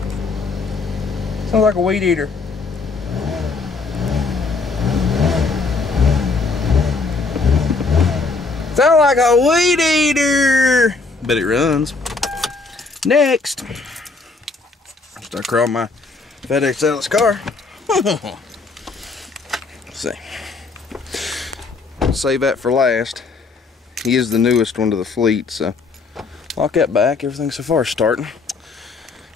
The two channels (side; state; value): right; quieter; 4.1 dB